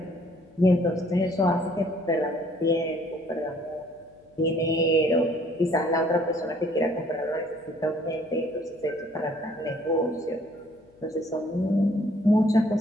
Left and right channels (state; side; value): noise; left; hum, 30 dB below the sound